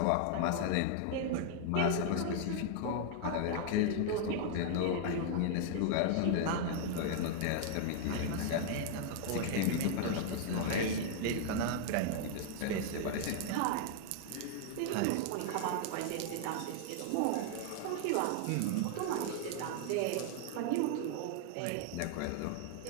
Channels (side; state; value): both; different; correlation -0.01